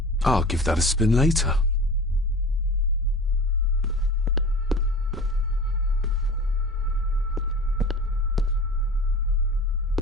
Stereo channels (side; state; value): both; normal; correlation 0.37